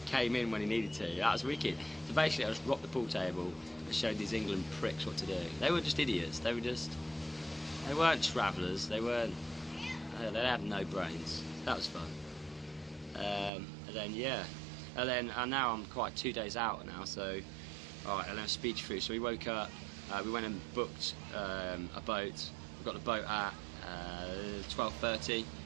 came in when he needed to. That was wicked. So basically I just rocked the pool table and showed these England pricks what to do. They were just idiots. They weren't travellers. They had no brains. That was fun. And then yeah, and now I'm quite 2 days out now, so alright, and then speech through. So we woke up, we went and booked a boat. We got the boat at 12:30.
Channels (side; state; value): left; drops out; at 13.5 s